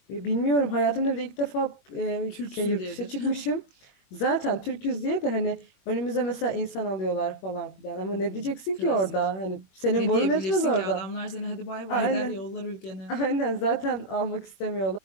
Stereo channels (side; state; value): right; late; 21 ms